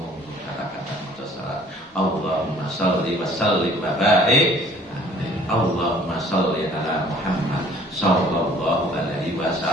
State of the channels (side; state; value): both; normal; correlation 0.55